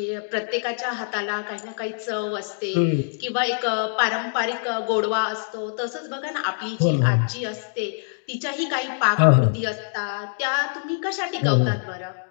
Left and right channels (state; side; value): silent; right; digital silence